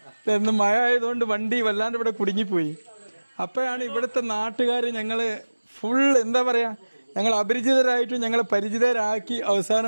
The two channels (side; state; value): both; inverted; correlation -1.00